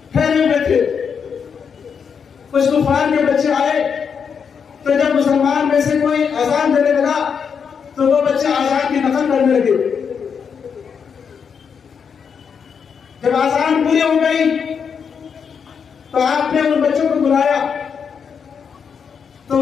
ठहरे हुए थे, कुछ तूफान के बच्चे आए, तो जब मुसलमान में से कोई अजान देने लगा तो वो बच्चे अजान की नकल करने लगे। जब अजान पूरी हो गई तो आपने उन बच्चों को बुलाया, तो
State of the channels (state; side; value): quieter; right; 6.6 dB